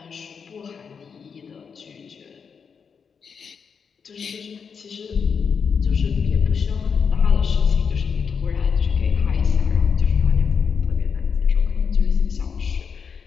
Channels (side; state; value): right; quieter; 6.2 dB